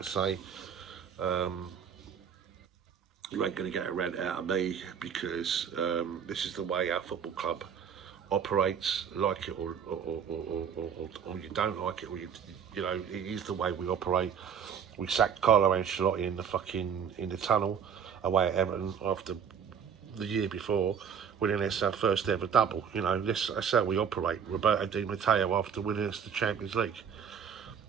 to say. You ain't going to get a rant out of me, because this is the way our football club operates. Like it or you don't like it, or you know, it is the way we operate. We sacked Carlo Ancelotti in the tunnel away at Everton after the year before winning us our first ever double. You know, that's how we operate. Roberto Di Matteo after winning us the Champions League.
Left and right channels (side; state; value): left; quieter; 7.5 dB